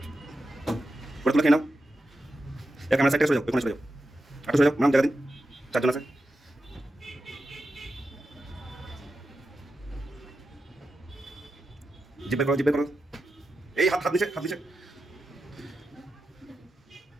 করে তুলে খেয়ে নাও। এক ক্যামেরা সাইড থেকে সরে যাও, ওখানে সরে যাও, আটু সরে যাও, নাম জায়গা দিন, চারজন আছে। জিপ বের করো, জিপ বের করো। এই হাত হাত নিচে, হাত নিচে।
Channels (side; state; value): both; normal; correlation 0.90